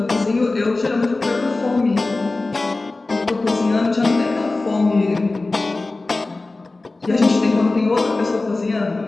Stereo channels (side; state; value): right; quieter; 3.3 dB